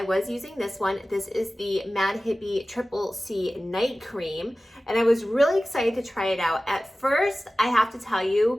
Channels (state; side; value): normal; both; correlation 0.96